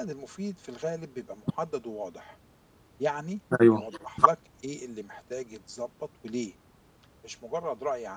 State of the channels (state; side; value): identical; both; correlation 1.00